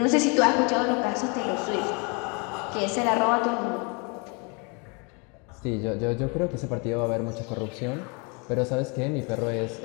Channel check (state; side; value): quieter; right; 32.7 dB